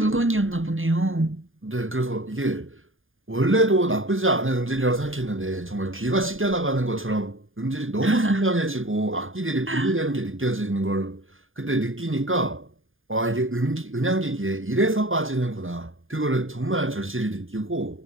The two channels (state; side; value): late; left; 0.59 ms